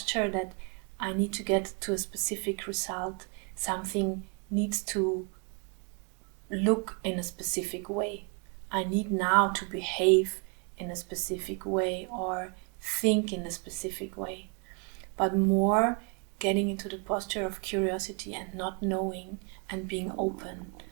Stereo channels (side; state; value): left; quieter; 36.5 dB